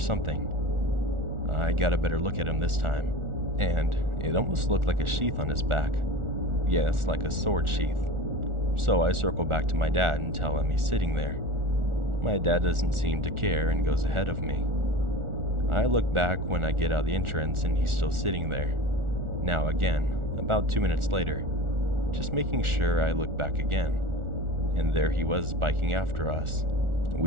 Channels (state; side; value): late; left; 1.4 ms